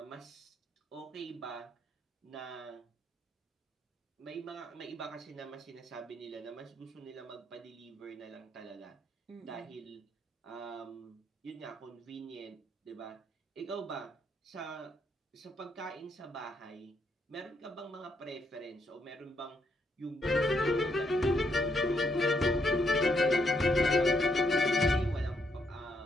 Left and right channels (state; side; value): normal; both; correlation 0.75